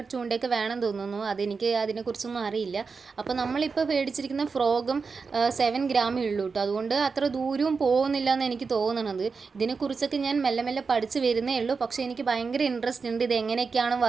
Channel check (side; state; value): left; quieter; 4.9 dB